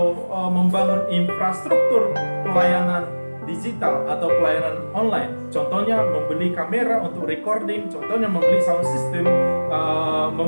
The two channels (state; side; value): inverted; both; correlation -1.00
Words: membangun infrastruktur pelayanan digital atau pelayanan online. Contohnya membeli kamera untuk recording, contohnya membeli sound system,